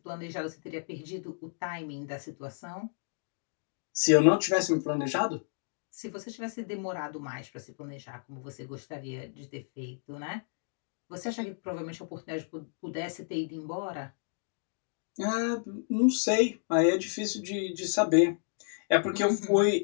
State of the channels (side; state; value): right; silent; digital silence